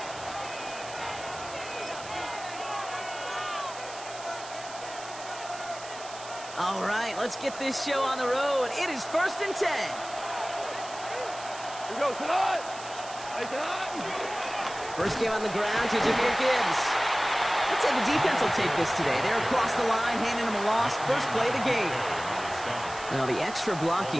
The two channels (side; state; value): right; noise; hiss, 14 dB below the sound